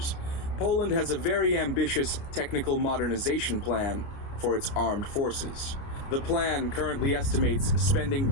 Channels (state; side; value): late; right; 29 ms